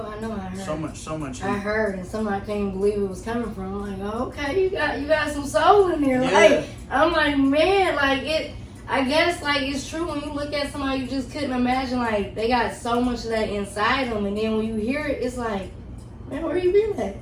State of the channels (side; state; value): both; identical; correlation 1.00